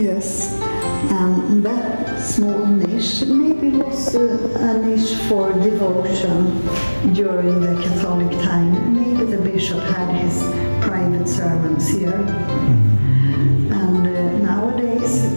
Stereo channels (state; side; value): inverted; both; correlation -1.00